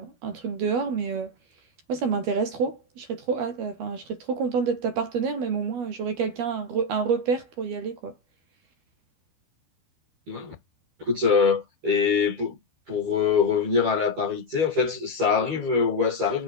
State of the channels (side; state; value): left; late; 12 ms